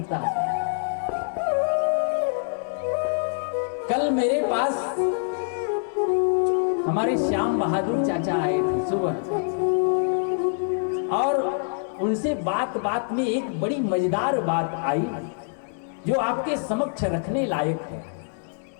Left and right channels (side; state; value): right; silent; 62 dB below the other